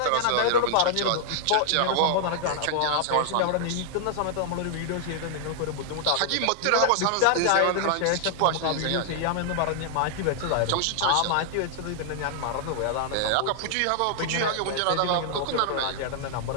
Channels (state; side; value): different; both; correlation 0.00